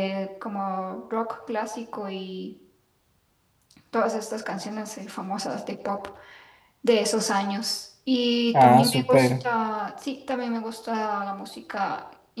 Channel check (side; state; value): both; identical; correlation 1.00